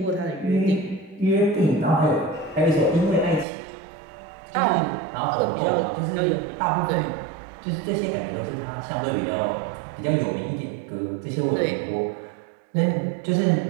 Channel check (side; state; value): left; drops out; at 3.5 s